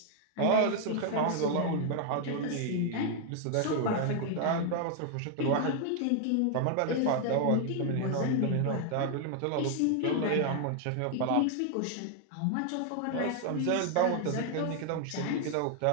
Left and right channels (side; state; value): both; different; correlation 0.00